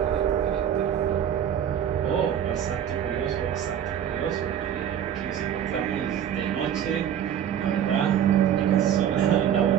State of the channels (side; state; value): left; quieter; 9.5 dB